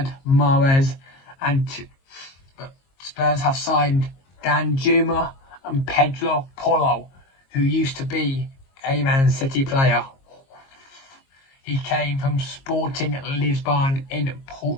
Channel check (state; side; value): late; right; 22 ms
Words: Mahrez, but Spurs have signed Dan Juma and Pedro Porro, who used to be a Man City player. He came from Sporting Lisbon in